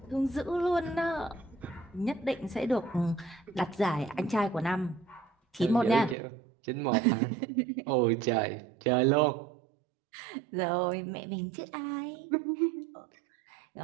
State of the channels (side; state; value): left; drops out; at 6.2 s